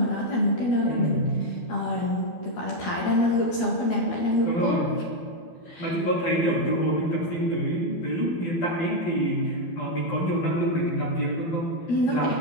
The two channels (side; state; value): right; late; 12 ms